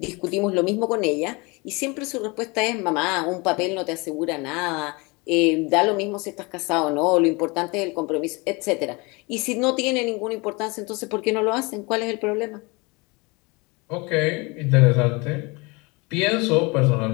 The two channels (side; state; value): right; quieter; 27.0 dB